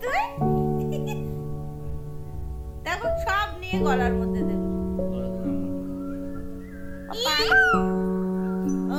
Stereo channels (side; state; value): both; identical; correlation 1.00